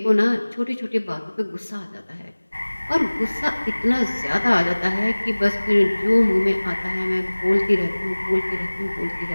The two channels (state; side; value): inverted; both; correlation -1.00